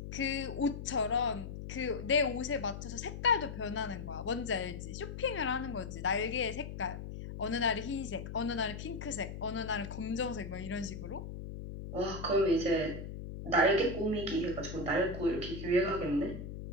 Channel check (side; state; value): left; noise; hum, 8 dB below the sound